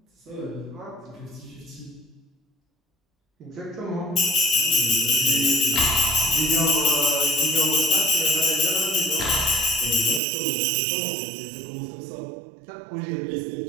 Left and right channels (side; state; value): left; drops out; at 10.2 s